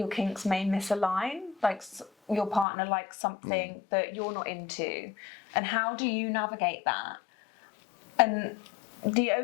kinks may misalign, like your partner likes something that you're not into. And how do you navigate that? And the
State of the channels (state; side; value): drops out; right; at 2.7 s